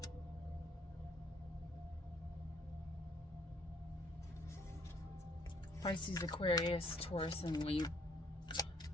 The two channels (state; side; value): normal; both; correlation 0.65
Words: Pisces, Aquarius, Taurus, and Libra.